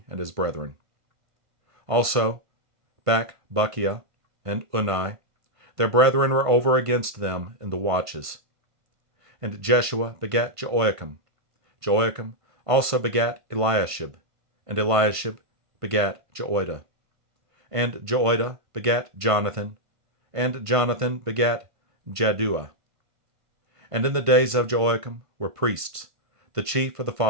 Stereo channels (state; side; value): late; left; 1.5 ms